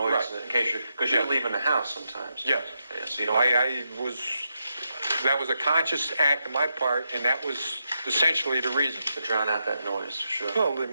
Right. In case because you're leaving the house sometimes. Yes. Yeah, so you don't... That was a conscious act on my part, and that was essentially the reason. To drown out that noise, for sure. Well, they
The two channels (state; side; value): inverted; both; correlation -0.84